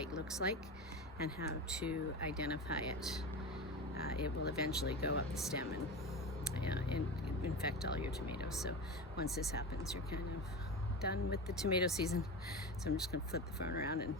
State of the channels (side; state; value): both; normal; correlation 0.26